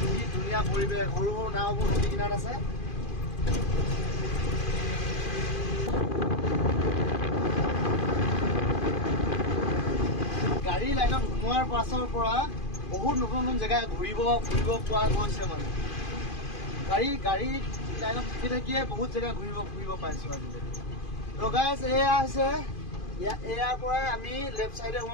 ধুনীয়া পৰিৱেশ, সৰু সৰু নাওবোৰ নদী কিনাৰত আছে। গাড়ী লাইনত সোমোৱাৰ পাছৰ পৰা বহুত নতুন নতুন জেগা ফুৰিব পোৱা গৈছে। মানে গাড়ী লাইনত থাকি থাকিয়ে বহুত জেগা ফুৰিব পাইছোঁ আজিলৈকে। তো গাইজ এয়া হৈছে, ইয়াৰ পৰাই আমি লেফ্ট চাইডে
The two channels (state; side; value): late; right; 2.5 ms